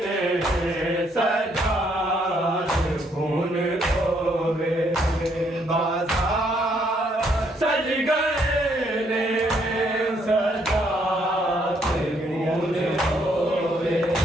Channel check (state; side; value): normal; both; correlation 0.70